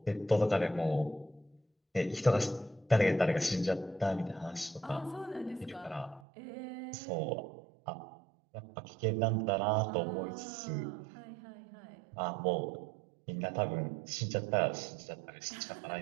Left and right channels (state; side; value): drops out; left; at 6.2 s